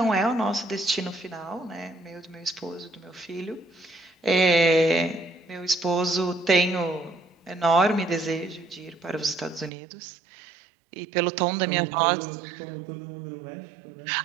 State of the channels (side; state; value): left; drops out; at 9.7 s